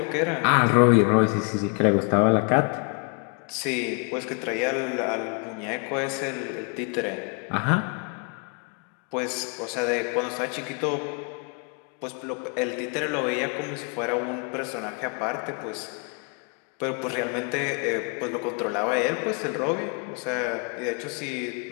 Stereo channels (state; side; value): quieter; right; 37.0 dB